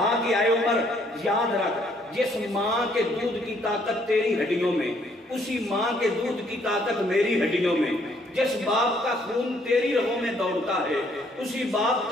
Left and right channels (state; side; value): normal; both; correlation 0.66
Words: کہ آئے عمر یاد رکھ، جس ماں کے دودھ کی طاقت تیری ہڈیوں میں، اسی ماں کے دودھ کی طاقت میری ہڈیوں میں، جس باپ کا خون تیری رگوں میں دوڑتا ہے اسی باپ